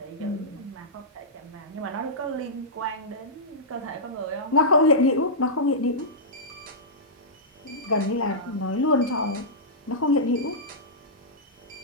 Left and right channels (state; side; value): normal; both; correlation -0.13